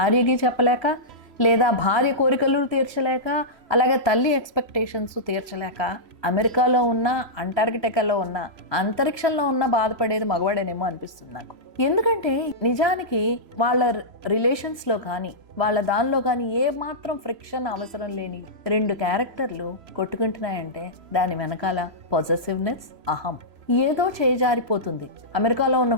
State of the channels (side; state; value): left; late; 3.0 ms